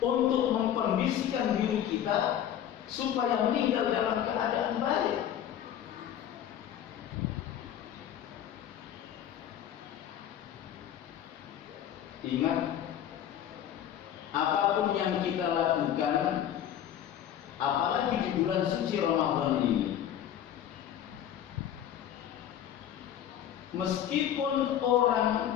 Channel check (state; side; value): quieter; right; 10.4 dB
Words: mengkondisikan diri kita supaya meninggal dalam keadaan baik. Ingat, apapun yang kita lakukan, apalagi di bulan suci Ramadan ini, meskipun